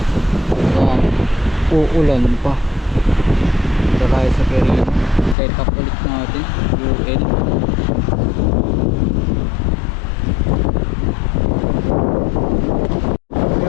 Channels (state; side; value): drops out; right; at 5.4 s